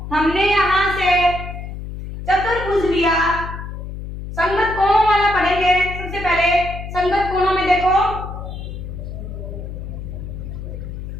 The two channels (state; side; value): noise; left; hum, 8 dB below the sound